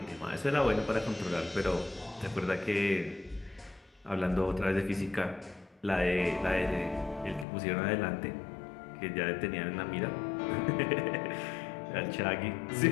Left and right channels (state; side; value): drops out; right; at 7.5 s